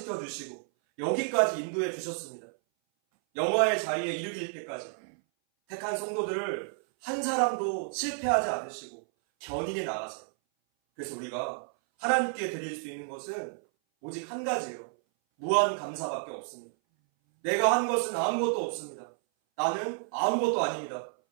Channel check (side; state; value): left; silent; 57 dB below the other